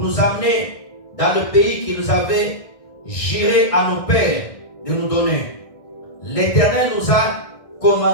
amener dans le pays qu'il nous avait juré à nos pères de nous donner. L'Éternel nous a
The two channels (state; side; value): late; right; 1.6 ms